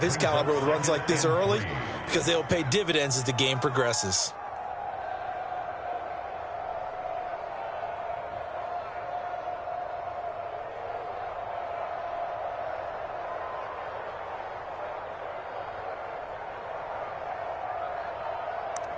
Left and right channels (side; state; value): both; identical; correlation 1.00